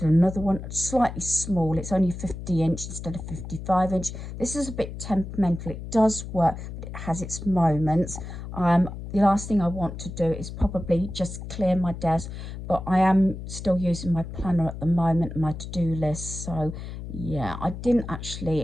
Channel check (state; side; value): noise; left; hum, 9 dB below the sound